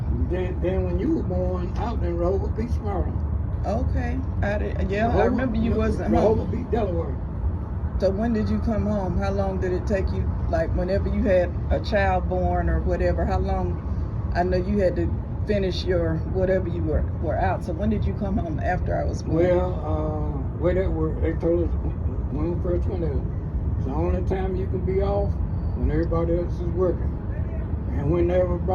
Then when you were born out in Rehoboth Beach, Maryland. Okay. I remember you wasn't Rehoboth home. Beach, Delaware. So when did you come home? How long did it take you? Like whenever you had a child born or whatever, how long? I know you had to finish your whatever you were out. So when did you come home after I was born? Well, where they told us when we first went there, it's the only time you can be off when everybody else is working. And when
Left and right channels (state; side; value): identical; both; correlation 1.00